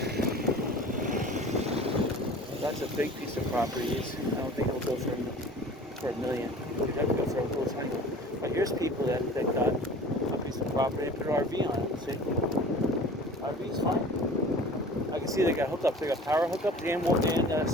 That's a big piece of property. I don't think it'll go for $1 million. You'd have to go for a little tiny. But here's people that got a piece of property and put an RV on it. See? RV's fine. I can see they got hookups. They got power hookups and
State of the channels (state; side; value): normal; both; correlation 0.43